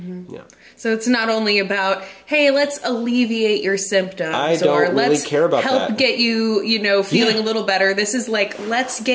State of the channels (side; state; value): both; identical; correlation 1.00